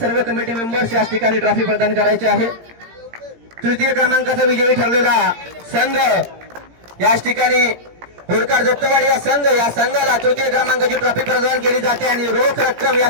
कमिटी मेंबर्स याच ठिकाणी ट्रॉफी प्रदान करायची आहे. तृतीय क्रमांकाचा विजयी ठरलेला संघ याच ठिकाणी होडकार दत्तवाडी या संघाला तृतीय क्रमांकाची ट्रॉफी प्रदान केली जाते आणि रोख रक्कम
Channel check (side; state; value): left; late; 17 ms